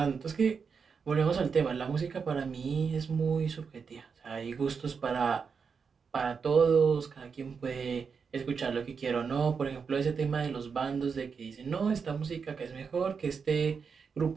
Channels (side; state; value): left; quieter; 5.8 dB